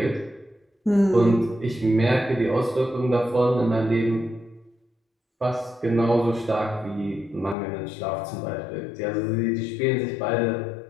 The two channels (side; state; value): right; drops out; at 7.6 s